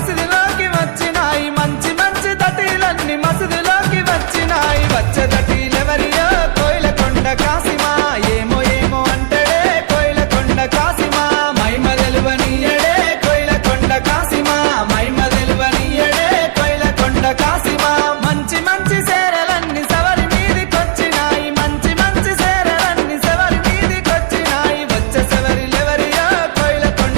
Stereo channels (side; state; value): left; silent; digital silence